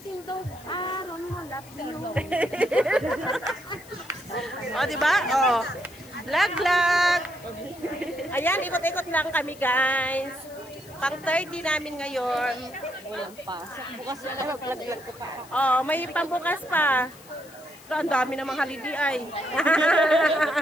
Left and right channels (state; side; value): noise; left; hiss, 22 dB below the sound